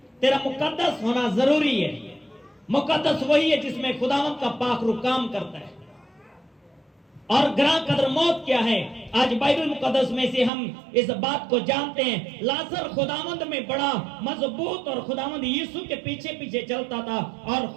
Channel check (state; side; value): drops out; left; at 10.5 s